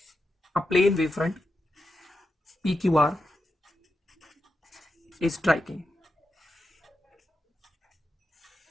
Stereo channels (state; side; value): normal; both; correlation 0.88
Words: a plane wavefront PQR is striking।